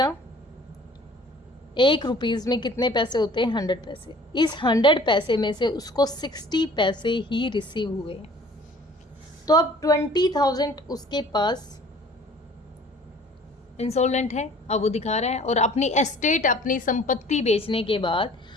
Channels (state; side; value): normal; both; correlation 0.51